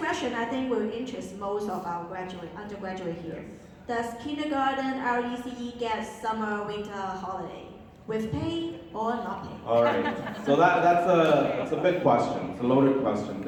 I think will interest most of our undergraduate here. Does kindergarten RECE get summer winter holiday with pay or not pay? All right. So that's a big question. It's a loaded question.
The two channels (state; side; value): identical; both; correlation 1.00